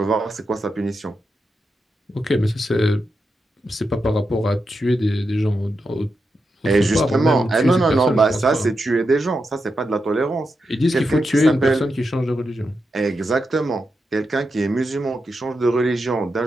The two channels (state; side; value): normal; both; correlation 0.87